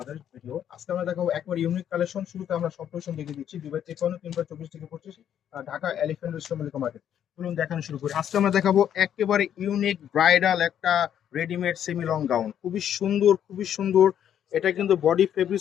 ভিডিও। আজকে আমরা দেখাবো একবার ইউনিক কালেকশন। শুরুতে আমরা সব কালেকশন দেখে দিচ্ছি 2053, 3/24 থেকে 25, Dhaka elephant road Mallika market. চলুন দেখানো শুরু করি। আজকে আমরা দেখাবো একেবারে ইউনিক ব্রাইডাল একটা রেডিমেড সেমি লং গাউন, খুবই সুন্দর খুবই সুন্দর। এটা কিন্তু বডি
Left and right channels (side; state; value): right; quieter; 9.8 dB